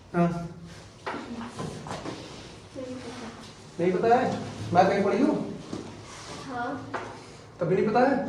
हाँ नहीं पता है? मैथ कहीं पढ़ी हो? हाँ तभी नहीं पता है?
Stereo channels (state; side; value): identical; both; correlation 1.00